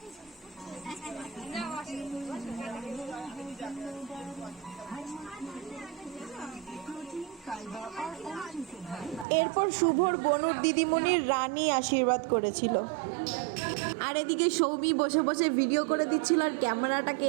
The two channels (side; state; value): left; drops out; at 9.2 s